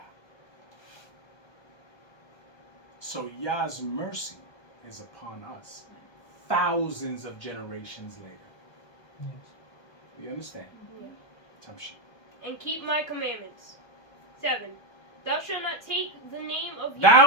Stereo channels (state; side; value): late; right; 1.2 ms